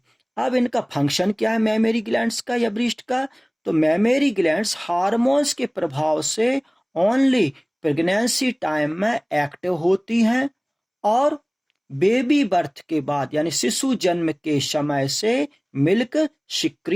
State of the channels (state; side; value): identical; both; correlation 1.00